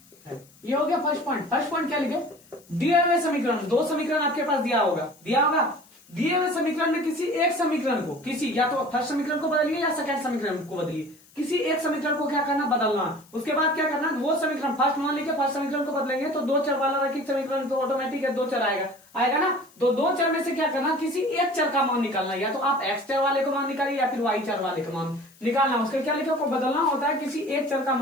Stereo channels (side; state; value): left; noise; hiss, 28 dB below the sound